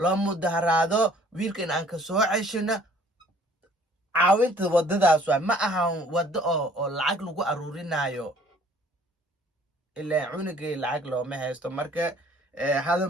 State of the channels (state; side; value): normal; both; correlation 0.56